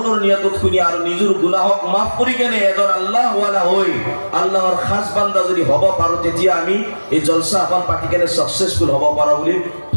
নিয়তত শুনি আৰু নিজৰ গুনাহক মাফ কৰি কেনে এজন আল্লাহৱালা হৈ আল্লাহৰ খাস বান্দা যদি হ'ব পাৰোঁ, তেতিয়া আমি এই জলসা এখন পাতি কেনে ছাকচেছফুল হ'ব পাৰোঁ বুলি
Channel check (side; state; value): both; inverted; correlation -1.00